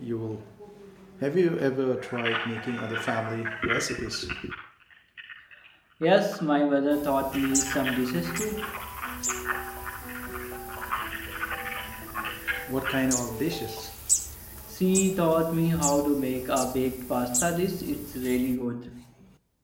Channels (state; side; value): identical; both; correlation 1.00